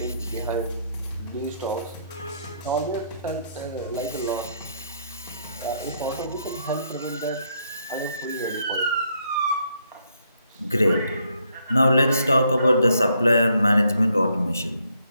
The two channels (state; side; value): inverted; both; correlation -0.73